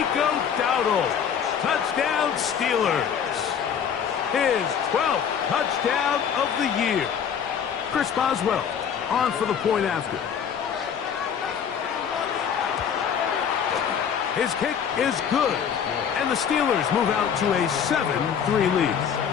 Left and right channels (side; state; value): right; quieter; 7.8 dB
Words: Dowdle. Touchdown Steelers. His 12th touchdown of the year. Chris Boswell on for the point after. His kick is good. And the Steelers move out to a 7-3 lead.